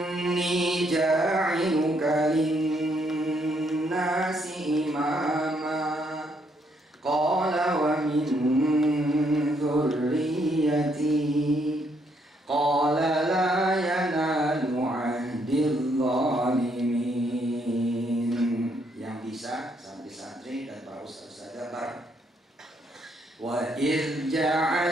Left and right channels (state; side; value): normal; both; correlation 0.72